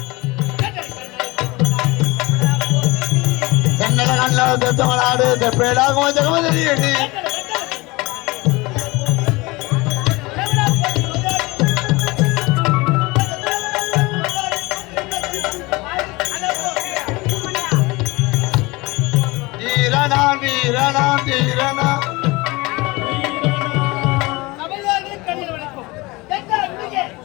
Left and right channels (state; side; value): quieter; right; 23.1 dB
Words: தென்னல கண்ண தெத்தமலாடு தெப்பேடாகும் ஜெகமதரியடி வீரனான் வீரனான் வீரனான்